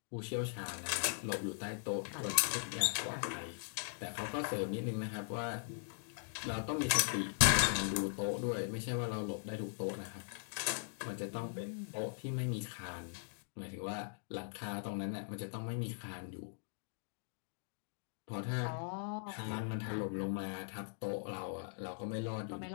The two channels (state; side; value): silent; right; digital silence